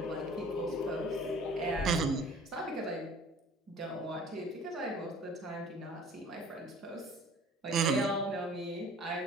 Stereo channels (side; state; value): both; normal; correlation 0.49